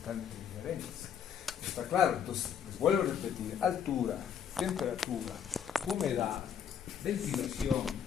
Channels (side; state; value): right; quieter; 8.3 dB